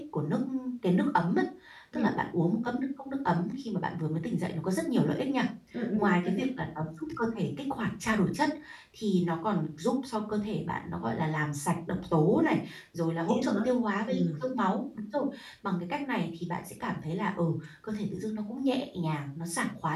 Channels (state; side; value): identical; both; correlation 1.00